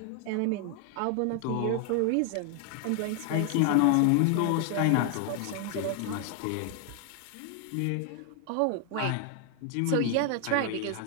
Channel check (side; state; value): both; different; correlation 0.00